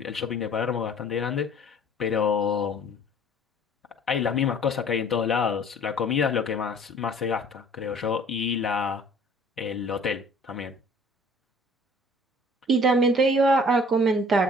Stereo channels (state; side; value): normal; both; correlation 0.52